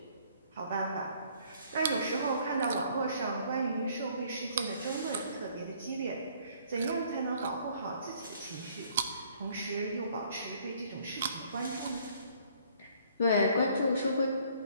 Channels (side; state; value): both; inverted; correlation -0.61